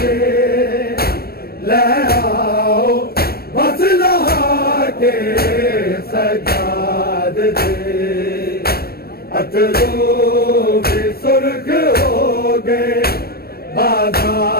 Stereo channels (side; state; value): right; late; 0.44 ms